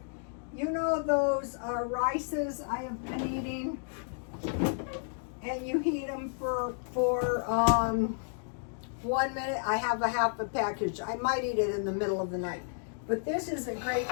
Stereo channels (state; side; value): silent; right; digital silence